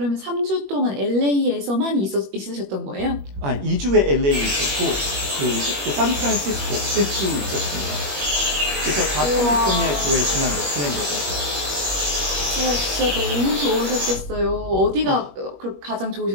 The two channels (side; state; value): left; late; 21 ms